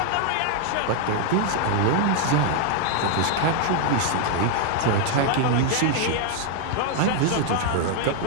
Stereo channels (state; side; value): different; both; correlation 0.00